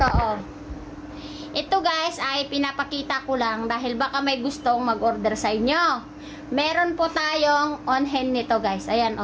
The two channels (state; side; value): identical; both; correlation 1.00